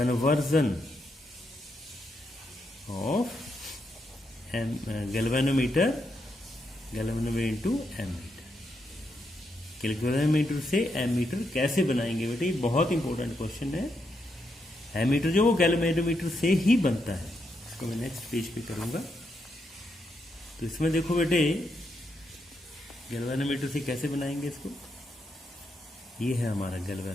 of galvanometer into ammeter. Galvanometer से एमीटर कैसे बनाएंगे बेटे, बहुत इंपॉर्टेंट क्वेश्चन है। एमीटर जो वो गैल्वेनोमीटर से ही बनता है, इसको मैं नेक्स्ट पेज पे करूंगा। तो इसमें देखो बेटे गैल्वेनोमीटर से कैसे बनाएंगे इसको, ये है हमारा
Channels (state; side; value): normal; both; correlation 0.81